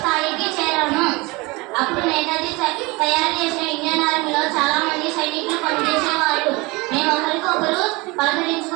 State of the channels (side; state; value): left; quieter; 24.7 dB